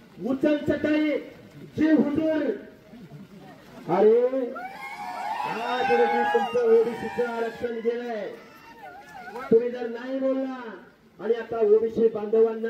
उचल चटाई, जे हुजूर. अरे आज रोजी तुमचं ओबीसीचं आरक्षण गेलंय, तुम्ही जर नाही बोलला. आणि आता ओबीसी बांधवांना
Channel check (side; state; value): both; identical; correlation 1.00